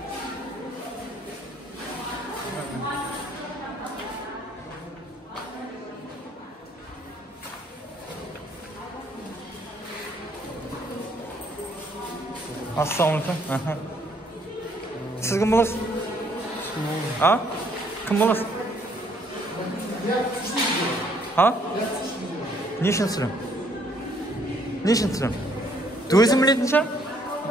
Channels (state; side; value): normal; both; correlation 0.65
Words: Ассалаумағалейкум. Сіз кім боласыз? Кім боласыз? Не үшін сұрам? Өзім білетін шығар?